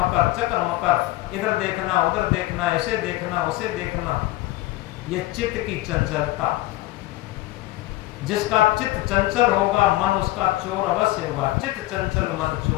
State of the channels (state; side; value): quieter; right; 17.6 dB